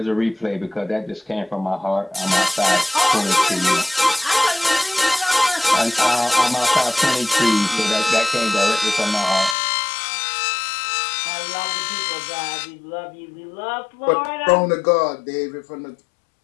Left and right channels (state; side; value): drops out; right; at 9.6 s